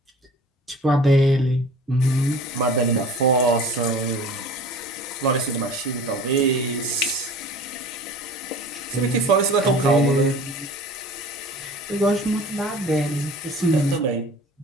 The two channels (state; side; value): normal; both; correlation 0.43